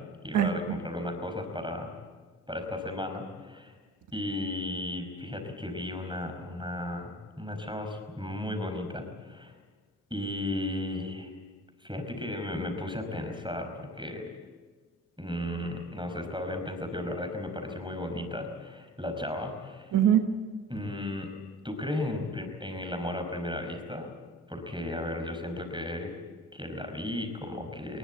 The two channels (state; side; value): normal; both; correlation 0.41